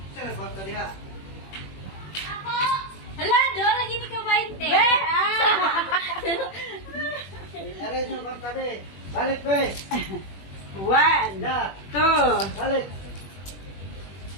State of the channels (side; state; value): right; late; 21 ms